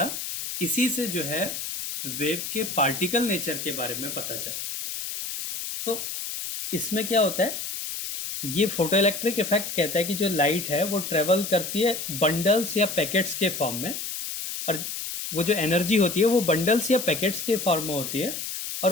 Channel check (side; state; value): left; noise; hiss, 6 dB below the sound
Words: इसी से जो है वेव के पार्टिकल नेचर के बारे में पता चला। तो इसमें क्या होता है, ये फोटो इलेक्ट्रिक इफेक्ट कहता है कि जो लाइट है वो ट्रेवल करती है बंडल्स या पैकेट्स के फॉर्म में, और वो जो एनर्जी होती है वो बंडल्स या पैकेट्स के फॉर्म में होती है, और